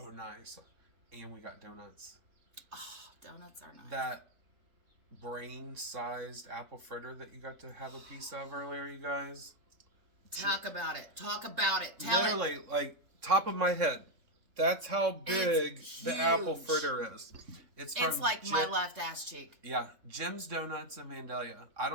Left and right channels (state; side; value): late; left; 3.5 ms